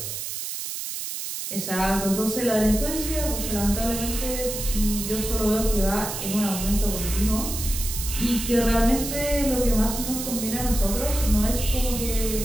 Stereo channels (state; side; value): noise; right; hiss, 5 dB below the sound